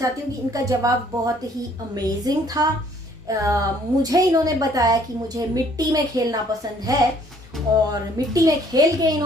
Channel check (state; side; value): normal; both; correlation 0.61